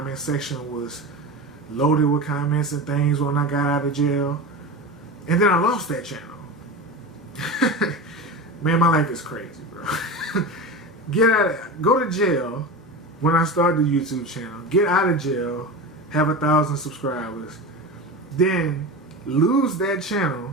section was loaded with comments and things when I got out of jail. And then I lost that channel. Man, my life is crazy, bro. Go to jail when I start the YouTube channel. Get out of jail, have 1,000 subscribers, then lose that channel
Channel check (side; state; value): both; normal; correlation 0.26